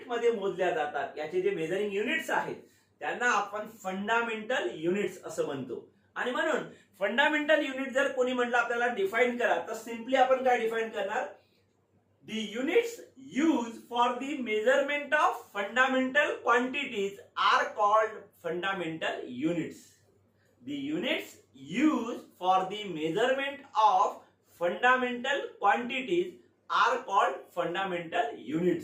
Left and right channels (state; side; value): identical; both; correlation 1.00